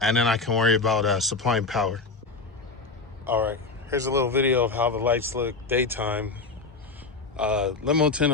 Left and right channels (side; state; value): right; quieter; 4.0 dB